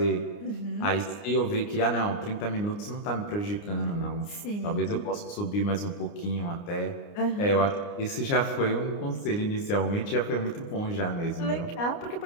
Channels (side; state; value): right; late; 29 ms